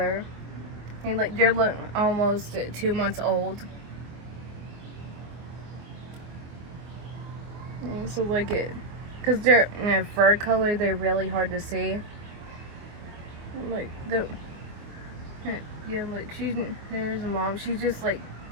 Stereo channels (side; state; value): left; late; 25 ms